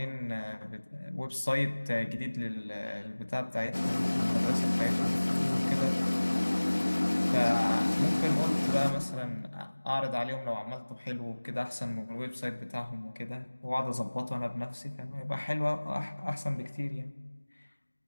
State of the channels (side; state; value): both; inverted; correlation -1.00